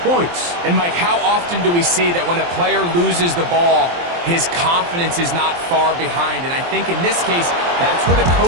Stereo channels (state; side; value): late; left; 23 ms